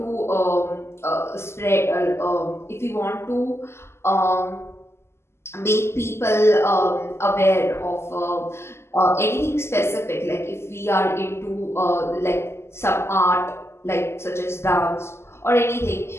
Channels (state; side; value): late; right; 0.12 ms